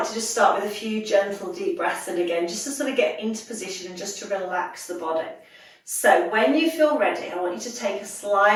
to just start with a few gentle deep breaths in again, just to sort of get into position and just to relax the body. So when you feel ready, I want you to take a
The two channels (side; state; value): both; identical; correlation 1.00